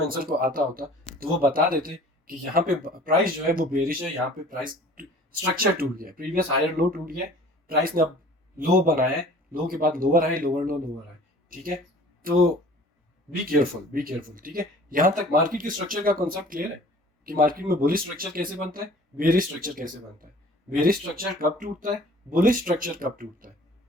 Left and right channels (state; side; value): normal; both; correlation 0.48